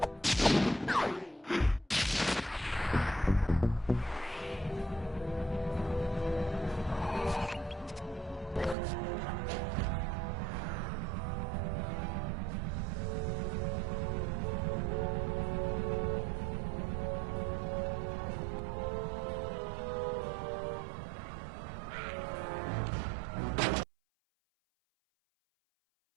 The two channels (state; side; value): drops out; left; at 8.8 s